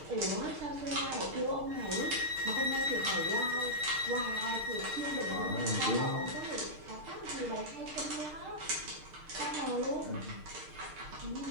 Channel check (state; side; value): late; left; 6.6 ms